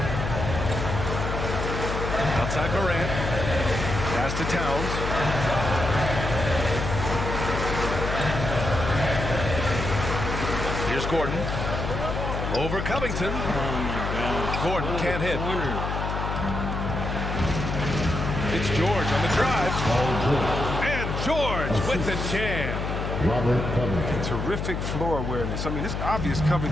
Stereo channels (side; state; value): left; noise; hum, 3 dB below the sound